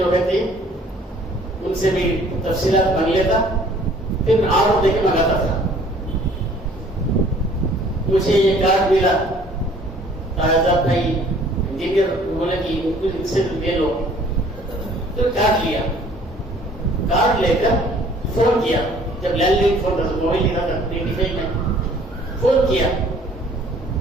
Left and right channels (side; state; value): both; normal; correlation 0.55